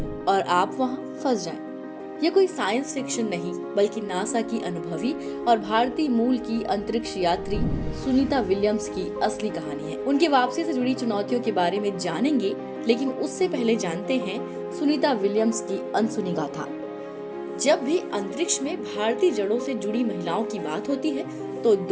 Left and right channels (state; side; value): identical; both; correlation 1.00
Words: और आप वहां फंस जाएं? यह कोई साइंस फिक्शन नहीं, बल्कि नासा की अनुभवी और भारतीय मूल की अंतरिक्ष यात्री सुनीता विलियम्स की असली कहानी है। उनकी वापसी से जुड़ी चुनौतियों के बारे में जानेंगे, लेकिन उससे पहले जानते हैं सुनीता विलियम्स की अनसुनी गाथा। जब भी अंतरिक्ष में भारतीय जड़ों से जुड़ी महिलाओं की बात होती है, तो